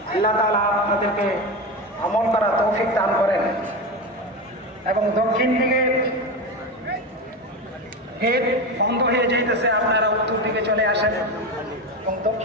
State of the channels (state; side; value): normal; both; correlation 0.20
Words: আল্লাহ তাআলা আপনাদেরকে আমল করা তৌফিক দান করেন। এবং দক্ষিণ দিকে গেট বন্ধ হয়ে যাইতেছে, আপনারা উত্তর দিকে চলে আসেন এবং